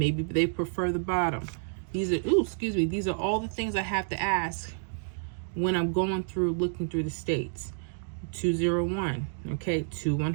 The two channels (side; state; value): left; silent; digital silence